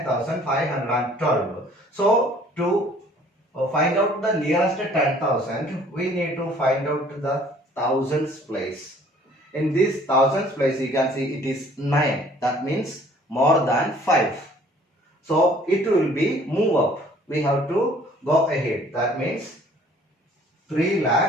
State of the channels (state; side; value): normal; both; correlation 0.56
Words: So to find out the nearest 10,000, we need to find out the thousands place. In this thousands place, you can see it is 9. That means more than 5. So it will be move up. We have to go ahead. That means